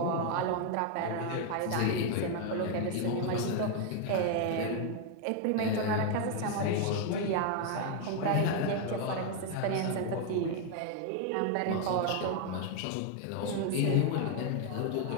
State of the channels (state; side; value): different; both; correlation 0.01